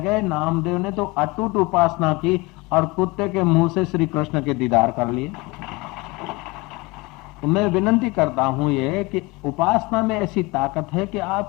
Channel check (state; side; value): quieter; right; 23.8 dB